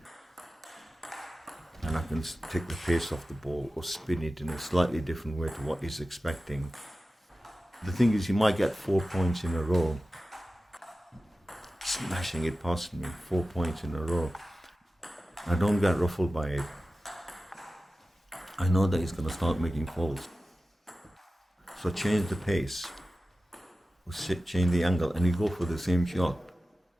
and I can take the pace off the ball or spin it in a slightly different way to what he's expecting. The thing is, he might get 4 points in a row, smashing it past me, 4 points in a row. I don't get ruffled by it. I know that he's going to start making faults. So I change the pace, or change the angle, and he go for the same shot,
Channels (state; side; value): normal; both; correlation 0.95